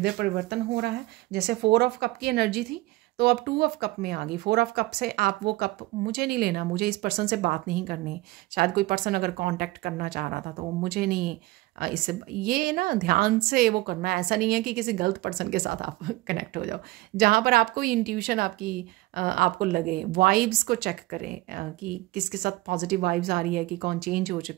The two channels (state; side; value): quieter; left; 19.6 dB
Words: परिवर्तन हो रहा है। जैसे 4 ऑफ कप की एनर्जी थी, तो अब 2 ऑफ कप में आ गई। 4 ऑफ कप से आप वो कप, मुझे नहीं लेना, मुझे इस पर्सन से बात नहीं करनी। शायद कोई पर्सन अगर कांटेक्ट करना चाह रहा था, तो मुझे नहीं इससे, ये ना ध्यान से वो करना है। ऐसा नहीं है कि किसी गलत पर्सन के साथ आप कनेक्ट हो जाओ। जहाँ पर आपको इंट्यूशन आपकी आपको लगे, वाइब्स को चेक करें कि किसके साथ पॉजिटिव वाइब्स आ रही है, कि कौन चेंज हो